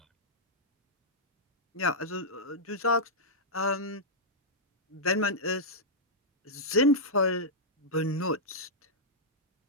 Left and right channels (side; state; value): both; normal; correlation -0.09